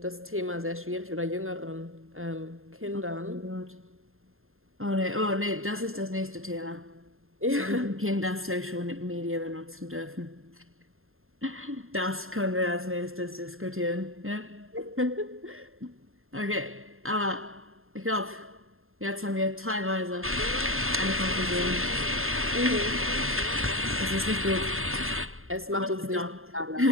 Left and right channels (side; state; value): left; late; 0.61 ms